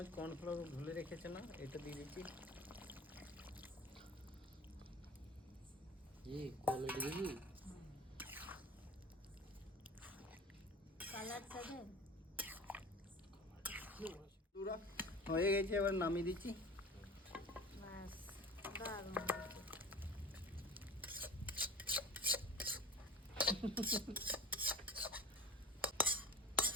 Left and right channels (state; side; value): normal; both; correlation 0.38